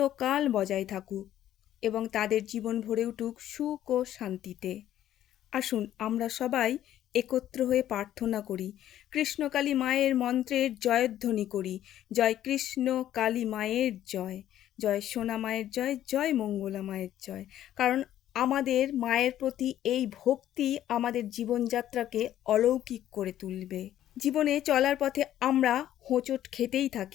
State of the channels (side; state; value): right; quieter; 12.1 dB